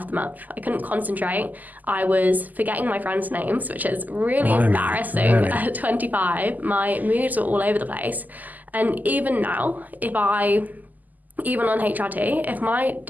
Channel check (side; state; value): left; late; 0.082 ms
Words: the month. I couldn't concentrate. I was forgetting my friends' names, which is really embarrassing at 25. My moods were all over the place. And even now, even on HRT, if my